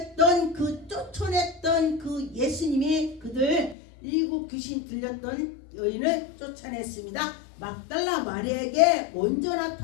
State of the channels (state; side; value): drops out; right; at 3.8 s